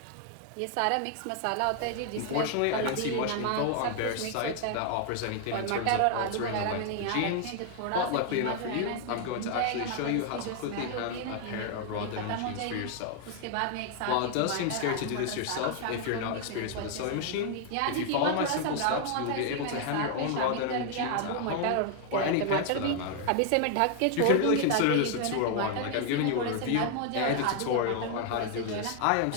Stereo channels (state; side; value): different; both; correlation 0.00